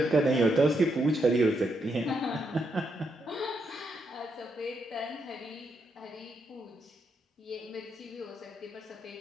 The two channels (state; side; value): normal; both; correlation 0.79